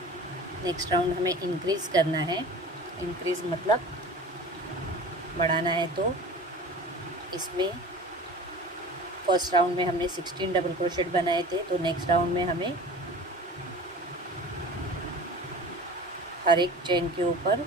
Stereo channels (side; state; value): both; normal; correlation 0.39